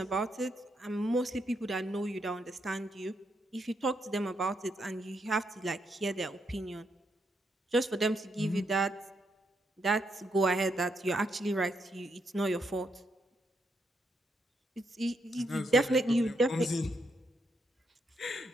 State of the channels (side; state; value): both; normal; correlation 0.79